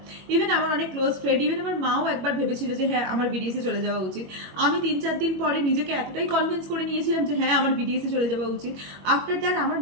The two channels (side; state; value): left; late; 21 ms